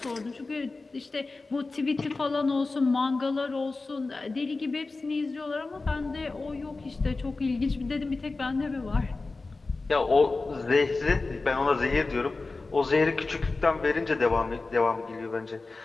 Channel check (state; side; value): quieter; right; 3.6 dB